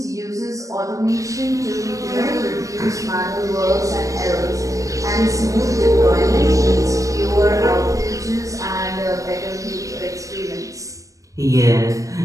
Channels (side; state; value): left; late; 0.16 ms